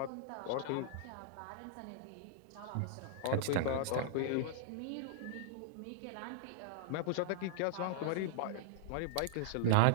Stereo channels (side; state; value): both; different; correlation -0.02